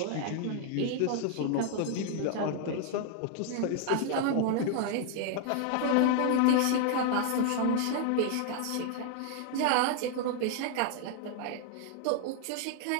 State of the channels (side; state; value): both; different; correlation 0.00